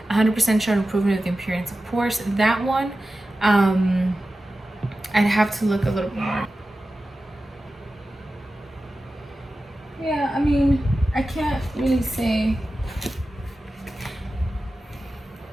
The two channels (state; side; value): normal; both; correlation 0.94